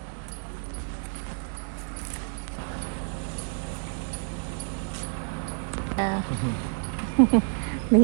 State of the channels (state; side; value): silent; left; 59 dB below the other